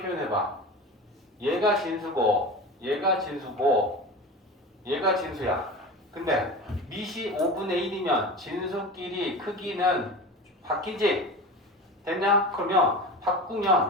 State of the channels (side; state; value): both; normal; correlation 0.30